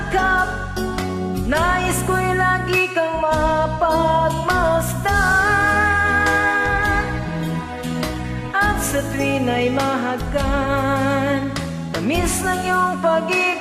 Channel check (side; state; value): both; identical; correlation 1.00